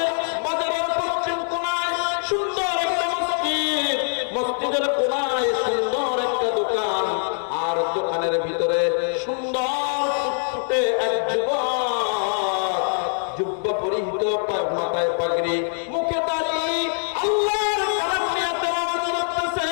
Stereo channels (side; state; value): right; silent; digital silence